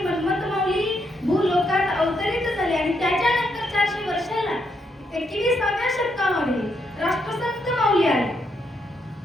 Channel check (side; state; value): both; normal; correlation 0.78